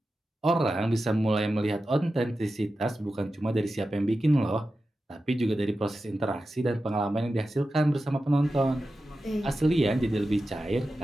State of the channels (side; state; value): both; normal; correlation 0.92